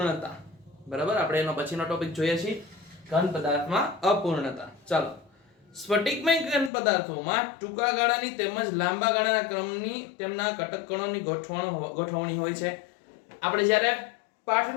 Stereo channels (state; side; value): drops out; right; at 6.7 s